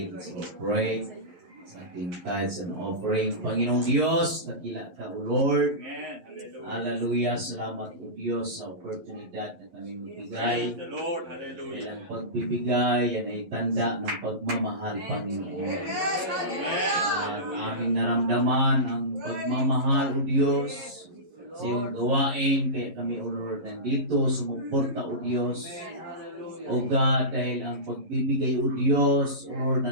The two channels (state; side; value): late; left; 11 ms